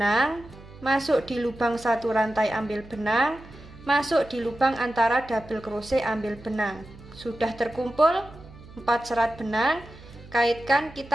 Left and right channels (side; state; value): right; noise; hum, 19 dB below the sound